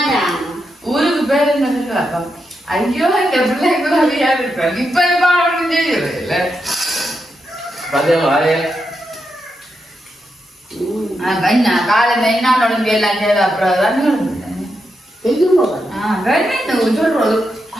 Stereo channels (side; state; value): both; normal; correlation 0.85